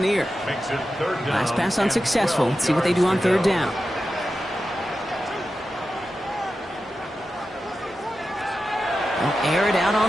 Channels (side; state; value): both; normal; correlation 0.91